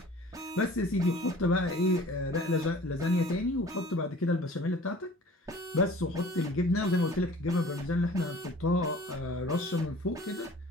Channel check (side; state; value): both; normal; correlation 0.47